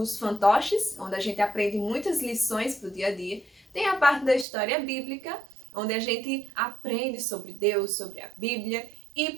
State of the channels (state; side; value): drops out; left; at 4.5 s